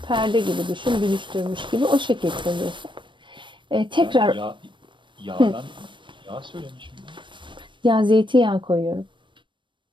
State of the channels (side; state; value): left; late; 0.23 ms